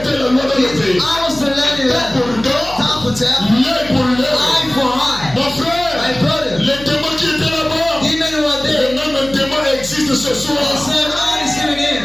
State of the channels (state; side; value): noise; left; hum, 16 dB below the sound